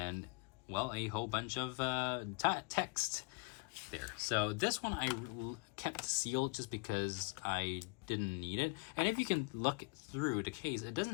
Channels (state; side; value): quieter; right; 31.8 dB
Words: well, a whole bunch of text there. So this one I kept sealed just because I didn't need it. And if you can look through the case, it